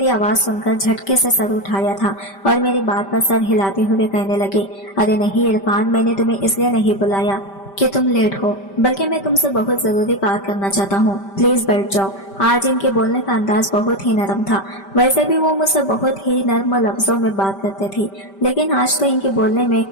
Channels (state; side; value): late; right; 5.1 ms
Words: आवाज सुनकर झटके से सर उठाया था और मेरी बात पर सर हिलाते हुए कहने लगे, अरे नहीं इरफान, मैंने तुम्हें इसलिए नहीं बुलाया कि तुम लेट हो, बल्कि मैं तुमसे बहुत जरूरी बात करना चाहता हूँ। प्लीज बैठ जाओ। आज इनके बोलने का अंदाज बहुत ही नरम था। वैसे भी वो मुझसे बहुत ही नर्म लफ्जों में बात करते थे, लेकिन आज तो इनके बोलने में